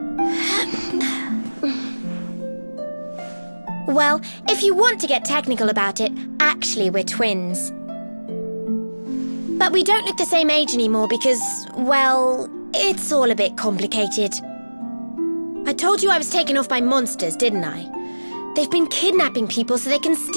Well, if you want to get technical about it, actually we're twins. But we don't look the same age anymore because, well, it's all a bit complicated. I told you I was taken off by monsters, didn't I? They've been kidnapping people so they can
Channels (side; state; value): both; inverted; correlation -1.00